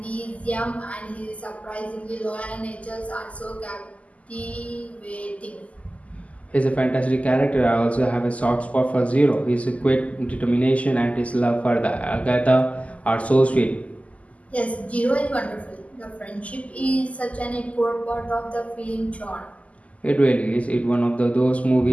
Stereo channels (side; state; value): right; late; 0.069 ms